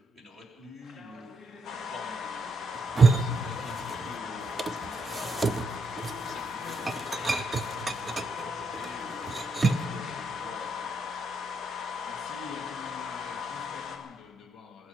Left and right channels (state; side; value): normal; both; correlation 0.78